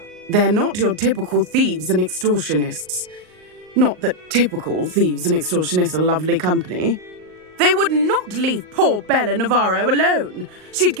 They're not your typical thieves and extortionists. Not that typical thieves and extortionists are lovely company. They would not leave poor Bella Navarro alone. She'd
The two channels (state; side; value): late; left; 38 ms